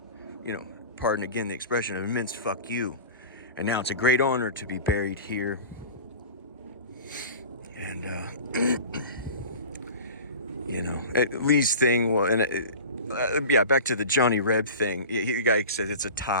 pardon again the expression, an immense fuck you. And now it's a great honor to be buried here. And, Lee's thing, well, and back to the Johnny Reb thing. The guy says it's a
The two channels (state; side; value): inverted; both; correlation -0.36